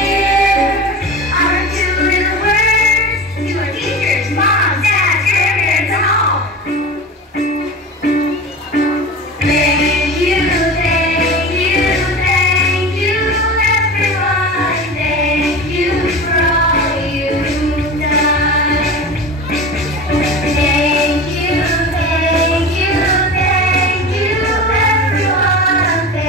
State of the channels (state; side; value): normal; both; correlation 0.30